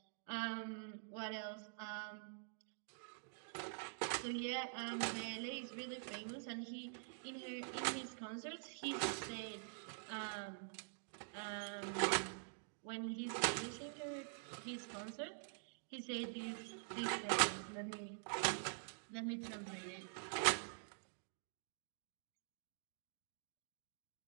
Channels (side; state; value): left; silent; digital silence